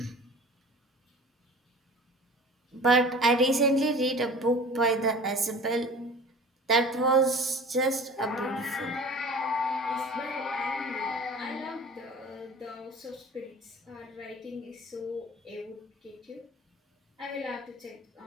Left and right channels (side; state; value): both; normal; correlation 0.41